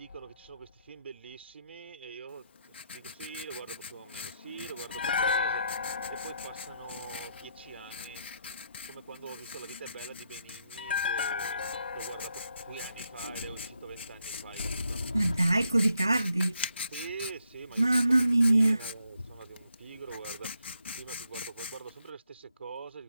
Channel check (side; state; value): both; inverted; correlation -0.79